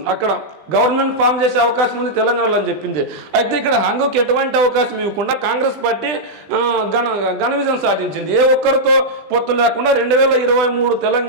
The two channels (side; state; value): left; late; 20 ms